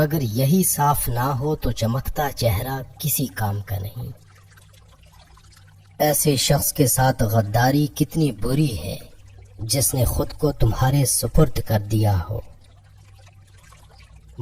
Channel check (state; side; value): identical; both; correlation 1.00